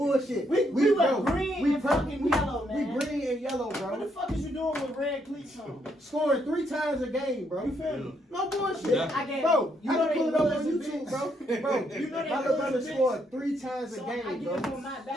We were bro, green and fucking yellow, man. We green and yellow, What the bro. fuck is you doing with red cleats on? Scoring 3 times a game, bro. You feel me? No bullshit. Yeah. I get, Bro, you I know can pull they it up on losing YouTube, bitch. bro. Bro, You know they my little brother losing bitch. scored 3 times a So I game, get him bro. on my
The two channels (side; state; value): both; normal; correlation 0.75